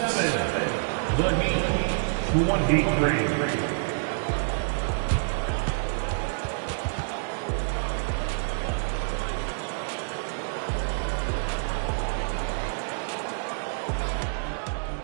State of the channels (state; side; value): silent; left; 60 dB below the other